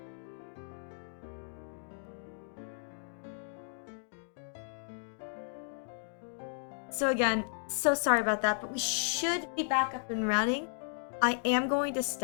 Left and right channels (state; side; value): silent; right; digital silence